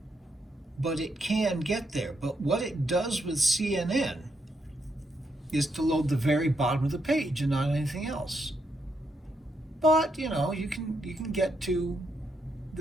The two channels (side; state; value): both; normal; correlation 0.79